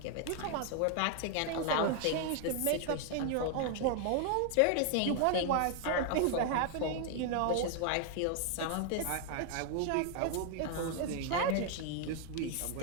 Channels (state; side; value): different; both; correlation 0.00